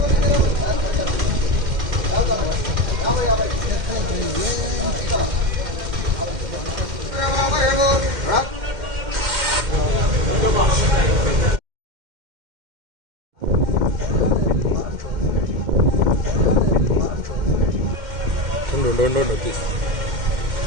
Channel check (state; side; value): late; left; 2.1 ms